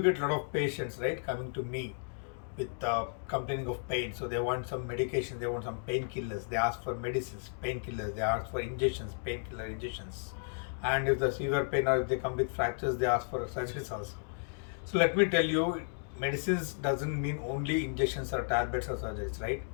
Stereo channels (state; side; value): silent; right; digital silence